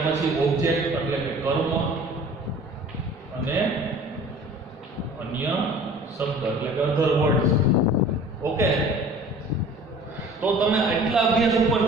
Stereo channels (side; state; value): both; normal; correlation 0.46